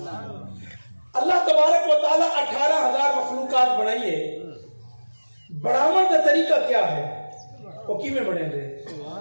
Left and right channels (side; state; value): both; inverted; correlation -1.00